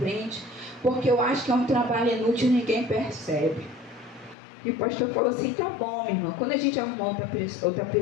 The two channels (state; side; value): drops out; right; at 4.4 s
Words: porque eu acho que é um trabalho inútil e ninguém percebe. E o pastor falou assim: tá bom, minha irmã, quando a gente arrumar outra